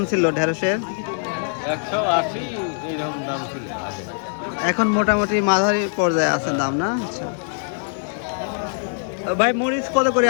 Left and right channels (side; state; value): right; silent; digital silence